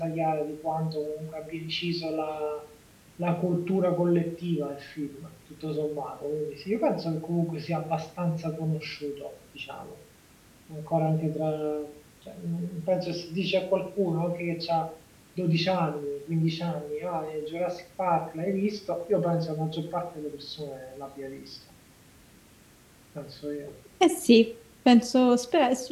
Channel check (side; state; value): both; identical; correlation 1.00